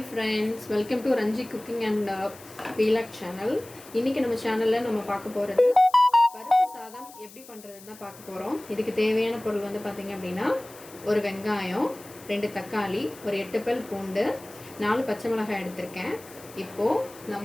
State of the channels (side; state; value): left; noise; hiss, 20 dB below the sound